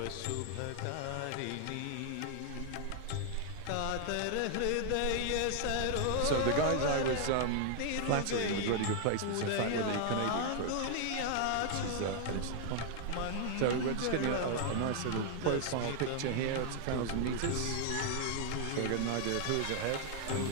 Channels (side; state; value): both; different; correlation 0.00